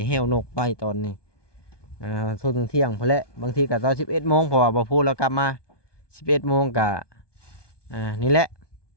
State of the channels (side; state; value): right; late; 1.2 ms